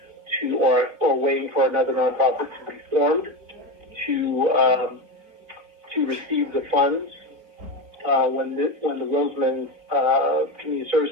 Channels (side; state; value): left; late; 3.7 ms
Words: or waiting for another nonprofit to be formed to receive the funds when the Roseman Community